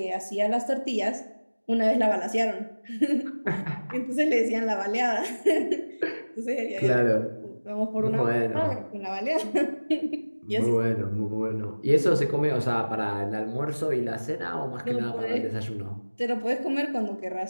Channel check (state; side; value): inverted; both; correlation -1.00